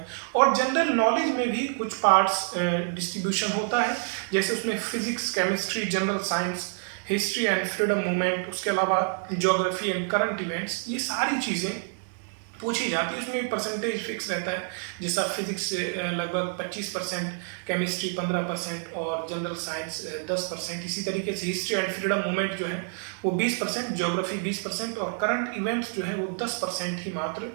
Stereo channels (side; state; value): left; silent; 56 dB below the other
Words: और जनरल नॉलेज में भी कुछ पार्ट्स डिस्ट्रीब्यूशन होता है, जैसे उसमें physics, chemistry, general science, history and freedom movement, उसके अलावा ज्योग्राफी एंड करंट इवेंट्स, ये सारी चीज़ें पूछी जाती है। उसमें भी परसेंटेज फिक्स रहता है, जैसा फिजिक्स से लगभग 25%, केमिस्ट्री 15% और जनरल साइंस 10%। इसी तरीके से हिस्ट्री एंड फ्रीडम मूवमेंट जो है वो 20%, ज्योग्राफी 20% और करंट इवेंट्स जो है वो 10% ही मात्र